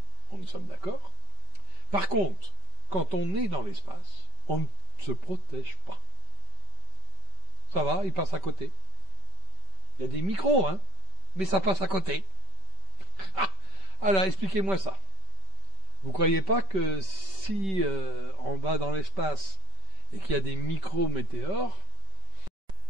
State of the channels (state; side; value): late; left; 5.2 ms